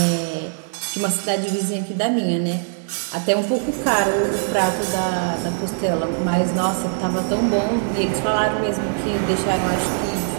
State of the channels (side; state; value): left; silent; 59 dB below the other